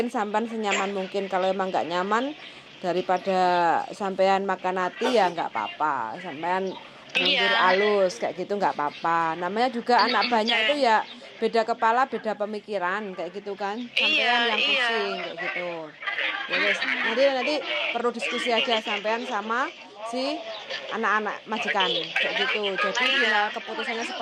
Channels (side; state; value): both; identical; correlation 1.00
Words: sampean senyaman mungkin. Kalau emang nggak nyaman, daripada sampean makan hati ya nggak apa-apa. Sampean mundur alus kayak gitu nggak apa-apa. Namanya juga anak banyak itu ya beda kepala, beda pemikiran kayak gitu kan. Sampean yang pusing kayak gitu. Ya, nanti perlu diskusi aja sampean sama si anak-anak majikan kayak gitu. Jadi final keputusannya